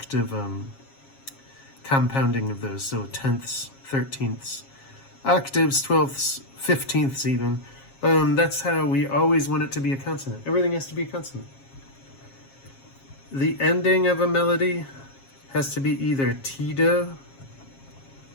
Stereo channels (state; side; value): late; right; 7.4 ms